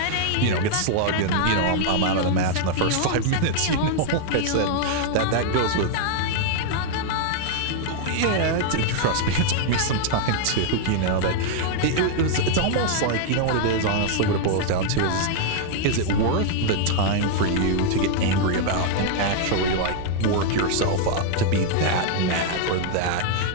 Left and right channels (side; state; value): both; different; correlation -0.01